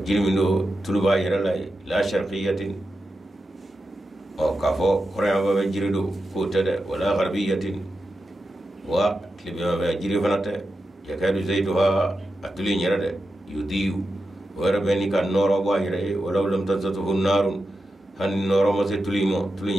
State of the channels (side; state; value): both; normal; correlation 0.90